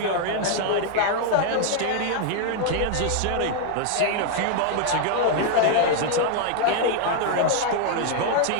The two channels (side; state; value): both; different; correlation 0.00